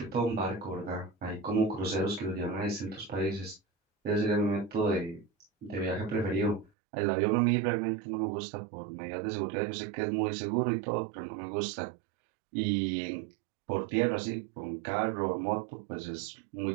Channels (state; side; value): drops out; left; at 6.7 s